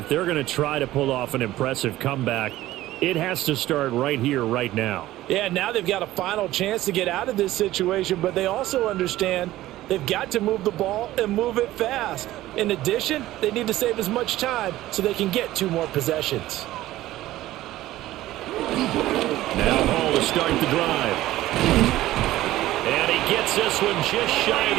they're going to try to pull off an impressive comeback, it has to start right here, right now. Yeah, now they've got a final chance to get out of this situation, but they also understand they've got to move the ball and move it fast. In addition, they need to save as much time so they can get 2 more possessions. Now Hall to start the drive. And he gets this one just shy of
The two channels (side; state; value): left; quieter; 15.5 dB